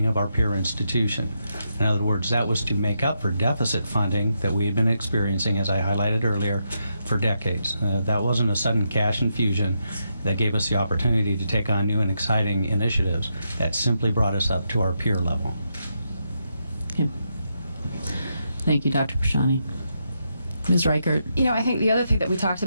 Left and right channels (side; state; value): both; inverted; correlation -0.82